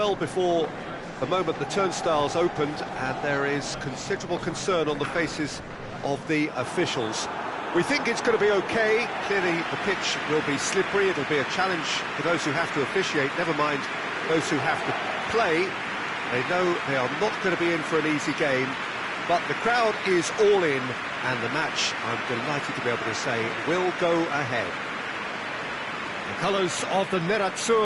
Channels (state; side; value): identical; both; correlation 1.00